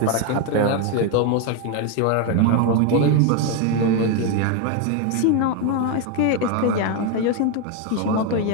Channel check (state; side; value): different; both; correlation 0.01